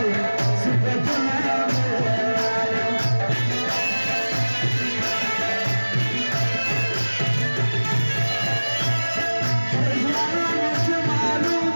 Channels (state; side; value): inverted; both; correlation -1.00